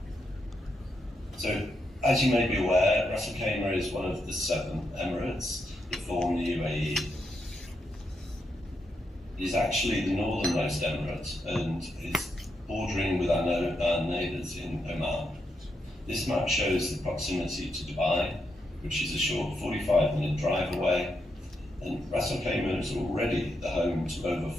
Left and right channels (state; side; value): normal; both; correlation 0.82